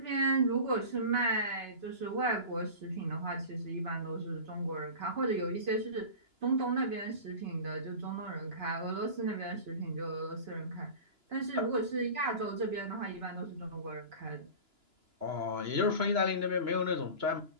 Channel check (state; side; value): late; left; 2.9 ms